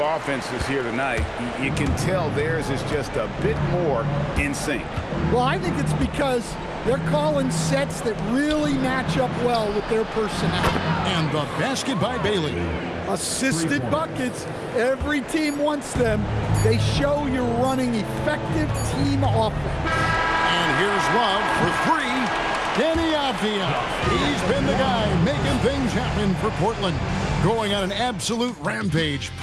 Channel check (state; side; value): identical; both; correlation 1.00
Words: offenses here tonight, you can tell theirs is just a bit more in sync. Well, I think it's because they're calling sets that really match up well with their personnel. And the basket by Bailey. Assisted buckets. Every team wants them. They show you're running effective team offense. And here's Love for 3. Deni Avdija. He's been the guy making things happen for Portland. Going on an absolute rampage,